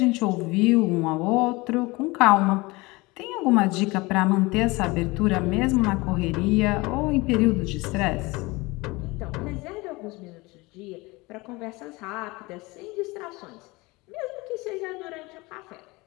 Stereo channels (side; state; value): right; quieter; 23.3 dB